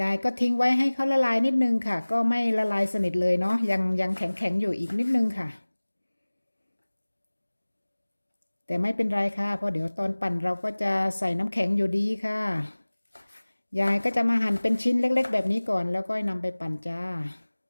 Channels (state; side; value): inverted; both; correlation -1.00